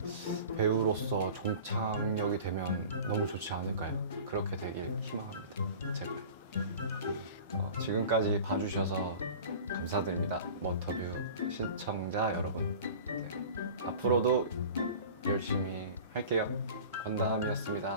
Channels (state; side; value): inverted; both; correlation -0.39